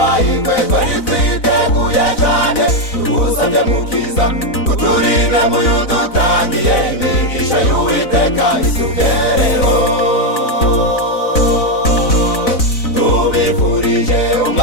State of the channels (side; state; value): right; late; 4.0 ms